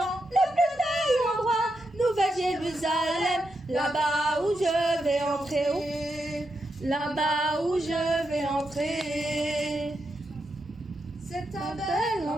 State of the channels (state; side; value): normal; both; correlation 0.84